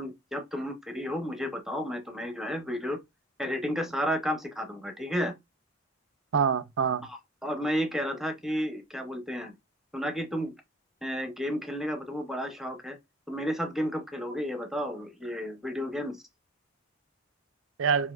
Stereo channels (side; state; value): both; normal; correlation 0.47